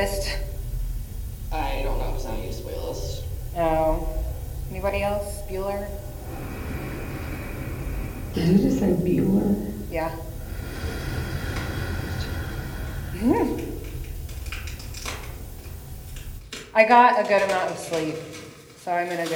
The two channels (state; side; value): identical; both; correlation 1.00